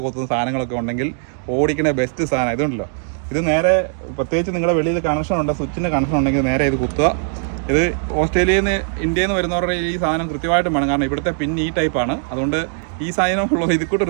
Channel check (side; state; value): left; silent; digital silence